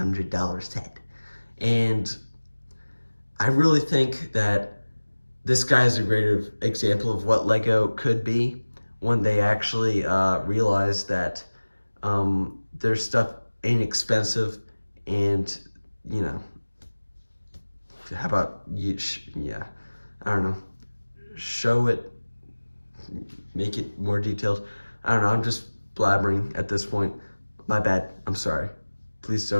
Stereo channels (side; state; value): both; inverted; correlation -1.00